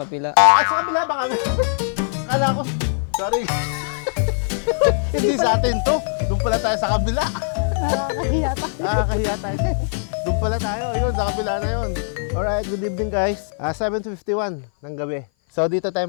At sa kabila ba kami? Kala ko, sorry. Hindi sa atin to. Doon pala tayo sa kabila. Nakakahiya tayo. Doon pala tayo. Yun, sa kabila na yun. Alright, good evening guys. 7:51 ng gabi. So dito tayo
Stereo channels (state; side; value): silent; right; 57 dB below the other